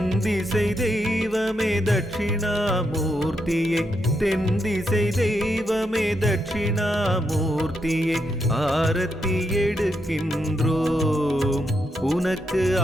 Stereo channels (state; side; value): normal; both; correlation 0.81